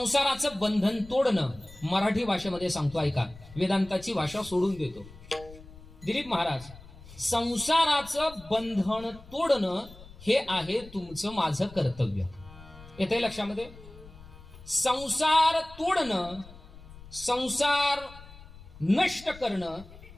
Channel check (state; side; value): noise; left; rumble, 19 dB below the sound